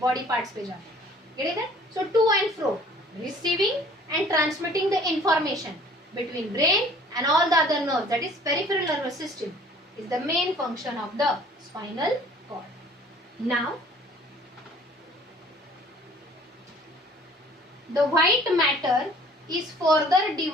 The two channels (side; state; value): both; normal; correlation 0.53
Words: पार्ट्स पे जाते हैं. Get it? So to and fro, receiving and transmitting the information between brain and all the other nerves, that is peripheral nervous system, is the main function of the spinal cord. Now, the white matter is further